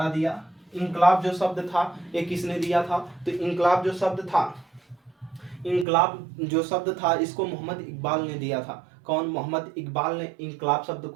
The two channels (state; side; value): drops out; left; at 5.9 s